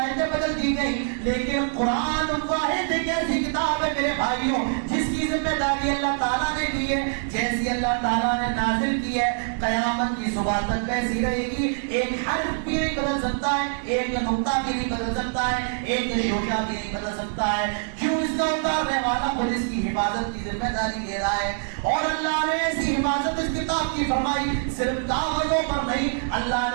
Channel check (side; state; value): left; silent; digital silence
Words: بدل دی گئی. لیکن قرآن واحد ایک ایسی کتاب ہے میرے بھائیوں جس کی ذمہ داری اللہ تعالیٰ نے دی ہے. جیسی اللہ تعالیٰ نے نازل کی ہے قیامت کی صبح تک ویسی رہے گی. ایک حرف بھی نہیں بدل سکتا ہے, ایک نقطہ بھی نہیں بدل سکتا ہے, ایک شوشہ بھی نہیں بدل سکتا ہے. کیوں؟ اس کا اتارنے والا خود اس کی حفاظت کی ذمہ داری لے رہا ہے. اور اللہ نے ایسی حفاظت اس کتاب کی فرمائی, صرف کاغذوں پر نہیں, اللہ